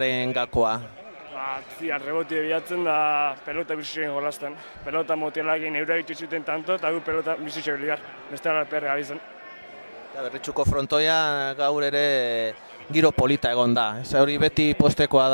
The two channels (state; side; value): inverted; both; correlation -1.00